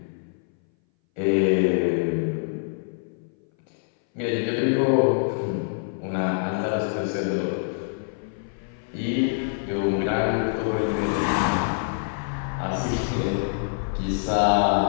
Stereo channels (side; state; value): right; silent; 59 dB below the other